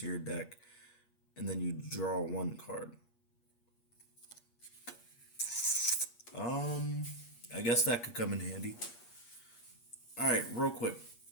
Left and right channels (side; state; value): right; late; 8.5 ms